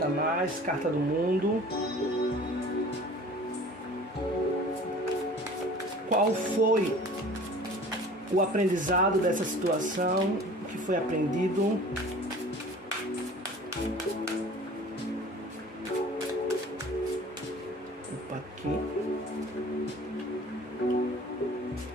mais. Carta do mundo. Qual foi o aprendizado dessa situação? O que foi aprendido? Opa, aqui.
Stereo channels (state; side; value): normal; both; correlation 0.45